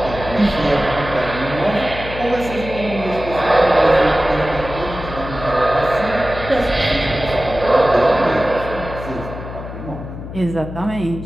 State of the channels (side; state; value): left; noise; hum, 10 dB below the sound